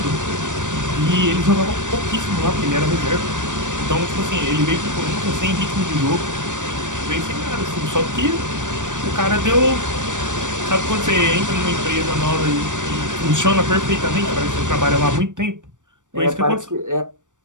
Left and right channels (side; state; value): left; late; 0.86 ms